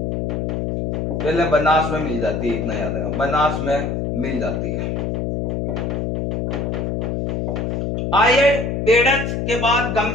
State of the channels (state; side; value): noise; left; hum, 1 dB below the sound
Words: पहले बनास में मिल जाती है। इतना याद रखना, बनास में मिल जाती है। आयड़ बेड़च के बाद